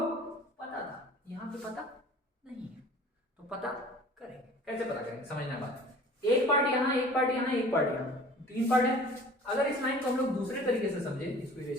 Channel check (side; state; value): both; normal; correlation 0.46